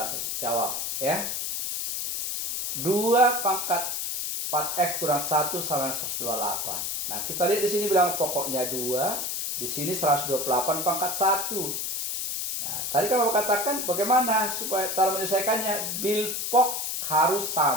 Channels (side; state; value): left; noise; hiss, 2 dB below the sound